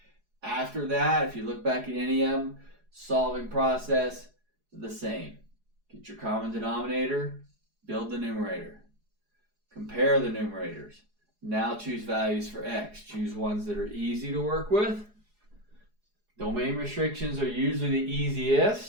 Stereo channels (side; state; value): left; late; 4.8 ms